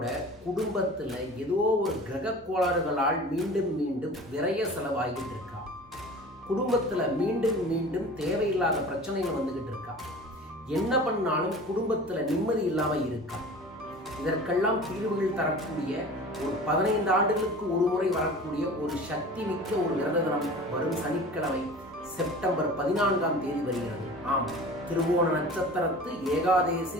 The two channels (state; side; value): normal; both; correlation 0.39